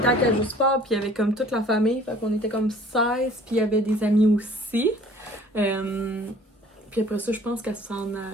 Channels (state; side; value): normal; both; correlation 0.52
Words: Cage au Sport, puis il y avait comme toute la famille. Fait qu'on était comme 16, puis il y avait des amis aussi. Puis après ça, je pense qu'elle s'en